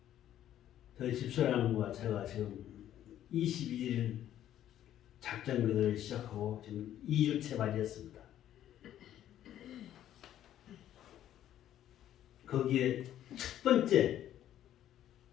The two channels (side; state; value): right; quieter; 11.6 dB